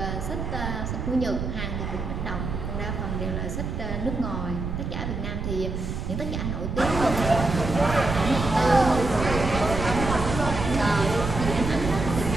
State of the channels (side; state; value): right; noise; rumble, 4 dB below the sound